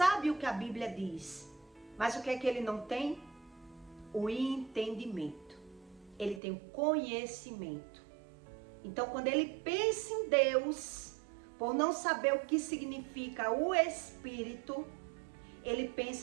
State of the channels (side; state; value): left; drops out; at 6.4 s